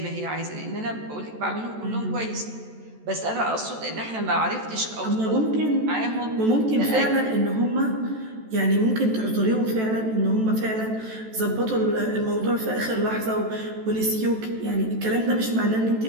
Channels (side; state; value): left; late; 14 ms